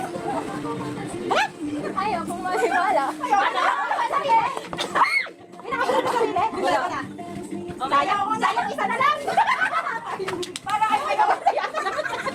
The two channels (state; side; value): identical; both; correlation 1.00